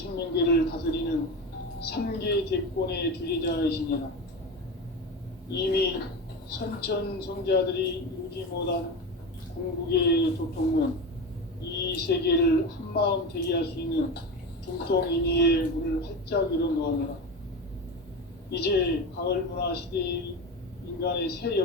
다스리는 3개 대권의 주재자이시니라. 이미 선천성자들이 이루지 못한 궁극의 도통문, 이 세계를 한마음 되게 할 수 있는 중통인의의 문을 활짝 열어놓았노라. 이제 가을문화 시대의 인간의 새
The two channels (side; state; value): both; normal; correlation 0.23